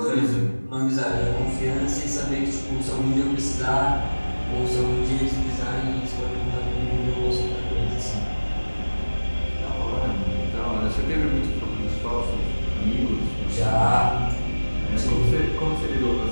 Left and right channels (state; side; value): inverted; both; correlation -1.00